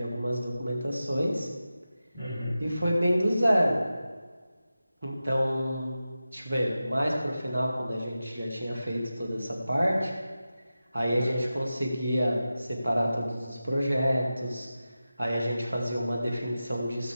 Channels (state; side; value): inverted; both; correlation -0.93